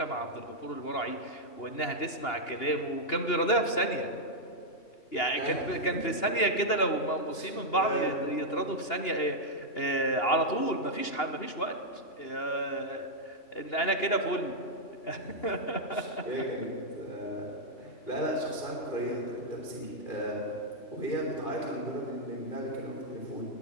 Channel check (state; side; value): late; right; 2.8 ms